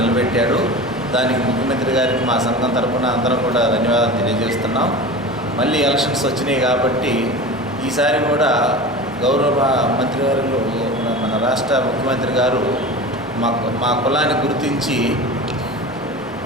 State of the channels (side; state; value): both; normal; correlation 0.32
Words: దానికి ముఖ్యమంత్రి గారికి మా సంఘం తరఫున అందరం కూడా ధన్యవాదాలు తెలియజేస్తున్నాం. మళ్ళీ ఎలక్షన్స్ వచ్చినాయి కాబట్టి ఈసారి కూడా గౌరవ మంత్రివర్యులు మన రాష్ట్ర ముఖ్యమంత్రి గారు మా కులాన్ని గుర్తించి